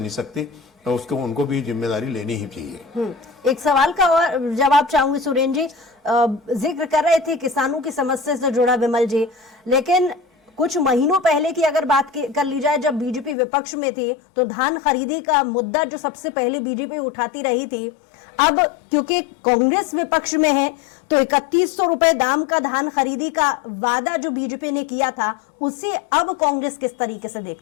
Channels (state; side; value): drops out; right; at 13.4 s